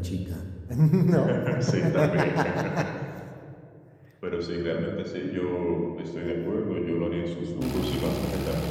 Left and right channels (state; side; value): identical; both; correlation 1.00